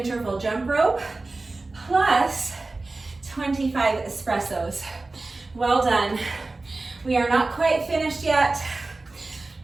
jump rope, plus 25 espressos. Well done. We are not quite finished yet.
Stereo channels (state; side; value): quieter; left; 3.3 dB